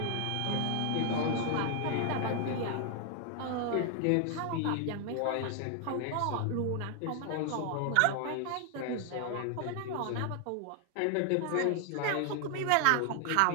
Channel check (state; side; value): different; both; correlation 0.00